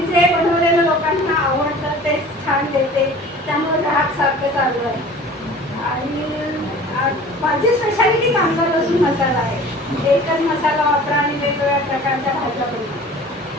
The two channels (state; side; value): normal; both; correlation 0.44